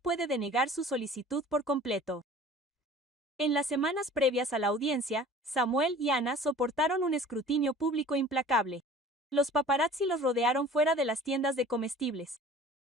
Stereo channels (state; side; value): normal; both; correlation 0.45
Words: denegar su solicitud por completo». En las semanas previas a la audiencia, Samuel y Anna soportaron un escrutinio público implacable. Los paparazzi los rodearon fuera de las tiendas de comestibles.